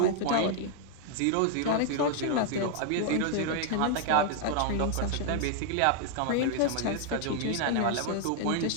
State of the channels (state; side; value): different; both; correlation 0.00